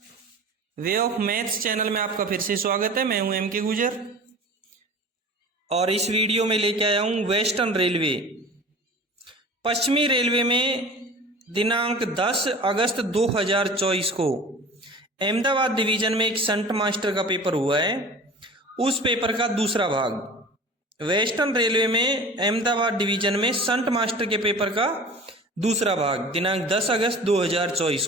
Way of maths channel में आपका फिर से स्वागत है। मैं हूं एम के गुजर और इस वीडियो में लेके आया हूं वेस्टर्न रेलवे। पश्चिमी रेलवे में दिनांक 10 अगस्त 2024 को अहमदाबाद डिवीजन में एक शंट मास्टर का पेपर हुआ है। उस पेपर का दूसरा भाग वेस्टर्न रेलवे में अहमदाबाद डिवीजन में शंट मास्टर के पेपर का दूसरा भाग दिनांक 10 अगस्त 2024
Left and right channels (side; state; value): both; normal; correlation 0.39